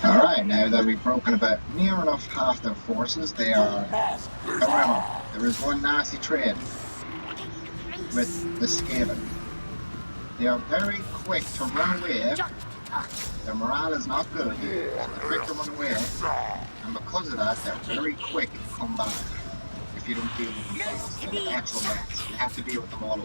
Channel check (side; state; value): both; inverted; correlation -1.00